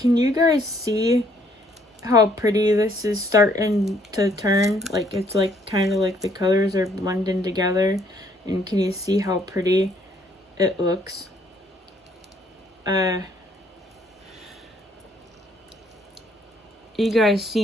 you guys see how pretty this is starting to turn? Like, it's like kind of like the colors are blending together. And can you see how pretty it looks? You guys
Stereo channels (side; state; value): both; normal; correlation 0.66